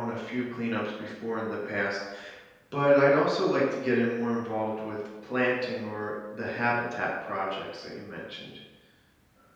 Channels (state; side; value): identical; both; correlation 1.00